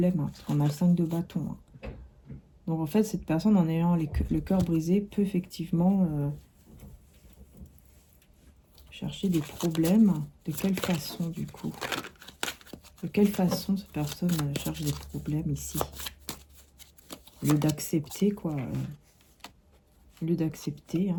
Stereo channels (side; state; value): both; identical; correlation 1.00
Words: Hein, parce qu'on a le 5 de bâton. Hein. Donc en fait cette personne en ayant le cœur brisé peut effectivement... chercher des problèmes. De quelle façon, du coup? De quelle façon cette personne cherche des problèmes ici? Au lieu d'accepter, quoi. Au lieu d'accepter.